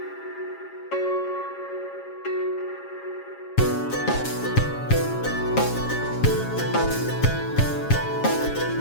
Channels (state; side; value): late; right; 7.3 ms